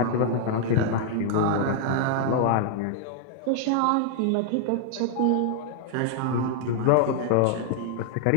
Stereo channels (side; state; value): both; different; correlation 0.00